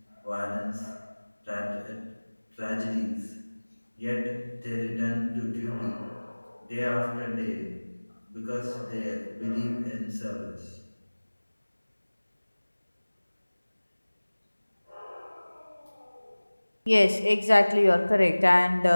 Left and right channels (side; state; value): both; inverted; correlation -1.00